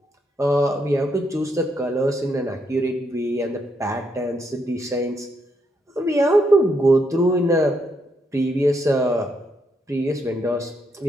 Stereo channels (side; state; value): both; normal; correlation 0.77